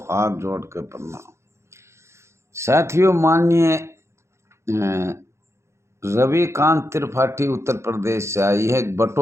हाथ जोड़ के प्रणाम। साथियों, माननीय रविकांत त्रिपाठी उत्तर प्रदेश से आई है,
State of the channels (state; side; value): late; left; 0.13 ms